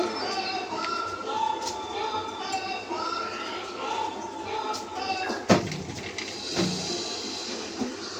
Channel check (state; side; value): identical; both; correlation 1.00